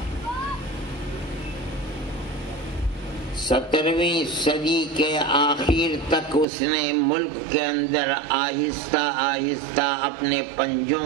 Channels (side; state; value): left; drops out; at 6.5 s